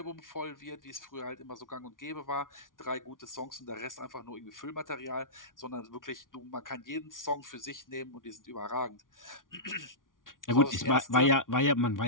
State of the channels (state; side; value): late; right; 0.89 ms